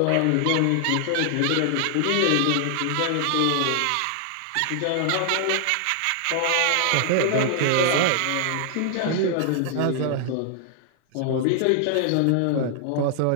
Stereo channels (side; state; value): both; different; correlation 0.00